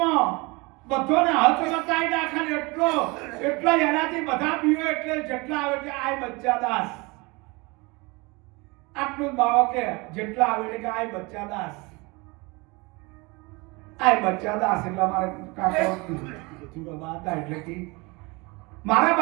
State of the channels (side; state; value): left; quieter; 26.0 dB